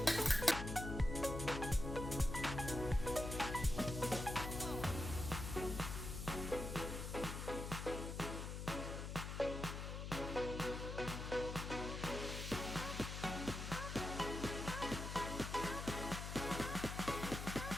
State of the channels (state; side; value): noise; left; hum, 5 dB below the sound